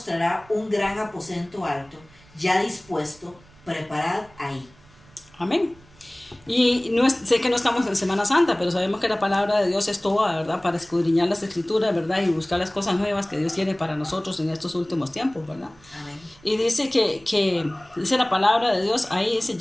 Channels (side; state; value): right; noise; rumble, 27 dB below the sound